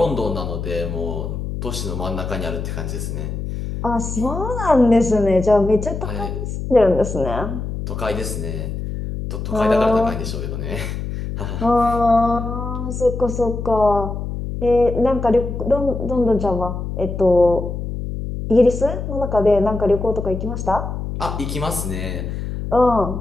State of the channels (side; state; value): left; noise; hum, 5 dB below the sound